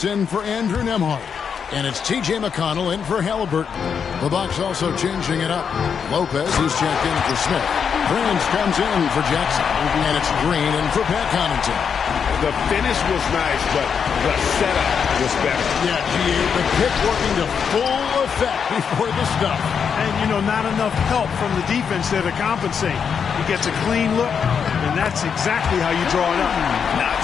in for Andrew Nembhard. And it's T.J. McConnell in for Halliburton. The Bucs also changing it up. Lopez is checked in for Smith. Prince comes in for Jackson. And it's Green in for Pat Connaughton. The finish was nice, but the setup was better. Yeah, the pick working to full effect before the stuff. And, you know, not enough help from the defense there to compensate. He gets a clean look, and that's exactly how you draw it up. Not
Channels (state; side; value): quieter; right; 6.8 dB